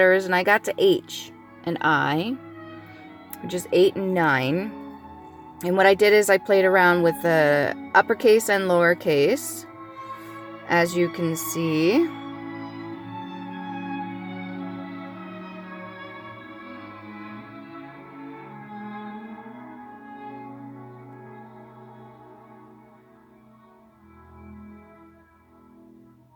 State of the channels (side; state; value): both; identical; correlation 1.00